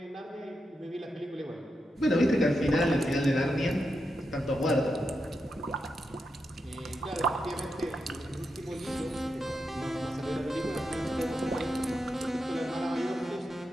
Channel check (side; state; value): both; normal; correlation 0.86